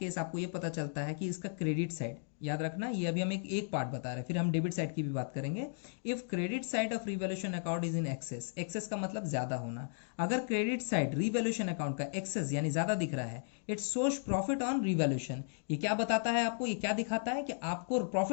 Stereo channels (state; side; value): silent; right; digital silence